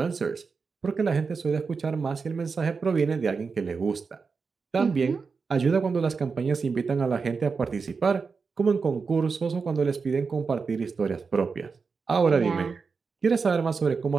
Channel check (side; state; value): left; quieter; 5.0 dB